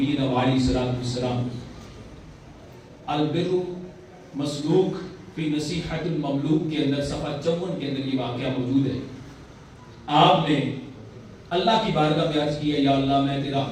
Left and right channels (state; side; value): identical; both; correlation 1.00